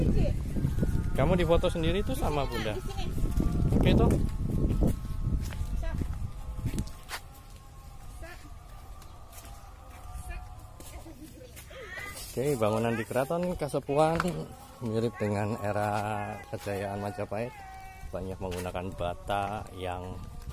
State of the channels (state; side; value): identical; both; correlation 1.00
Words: Ci. Kamu difoto sendiri tuh sama Bunda. Di sini. Oke tuh. Oke, bangunan di Keraton Kasepuhan mirip dengan era kejayaan Majapahit. Banyak menggunakan bata yang